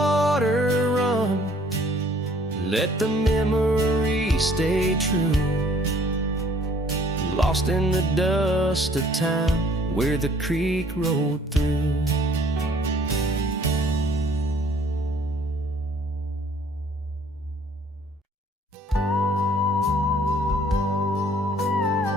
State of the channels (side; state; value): both; normal; correlation 0.58